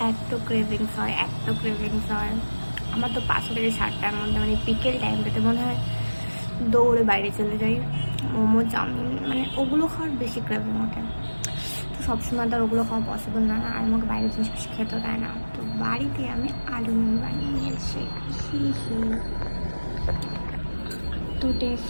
এত ক্রেভিংস হয়, এত ক্রেভিংস হয়? আমার তো 5টা থেকে 7টার মধ্যে মানে বিকেল টাইমটাতে মনে হয় দৌড়ে বাইরে চলে যাই, মোমো চাউমিন মানে ওগুলো খাওয়ার বেশি ক্রেভিং ওঠে। তো সবসময় তো আর ওগুলো খাওয়া পসিবল না, আর আমাকে বাইরের জিনিস বেশি খেতে দেয় না। তো বাড়িতে আমি আলু মিমি বানিয়ে নিয়েছি। এত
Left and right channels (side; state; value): both; inverted; correlation -1.00